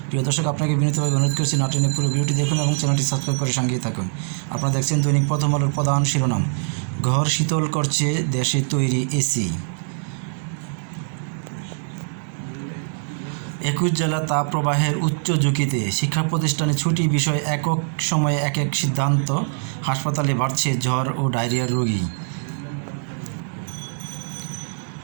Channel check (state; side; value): silent; left; digital silence